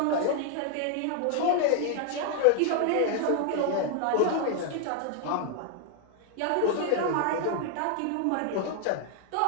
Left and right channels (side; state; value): both; different; correlation 0.00